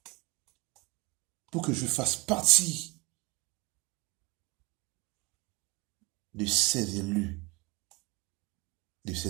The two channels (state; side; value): quieter; left; 25.9 dB